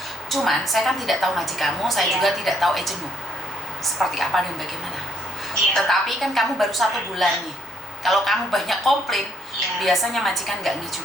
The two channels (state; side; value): normal; both; correlation 0.65